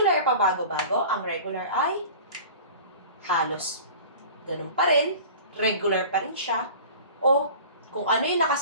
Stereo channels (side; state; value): both; inverted; correlation -0.40